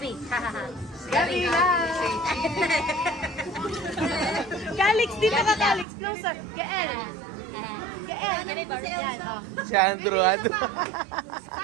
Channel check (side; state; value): left; drops out; at 5.9 s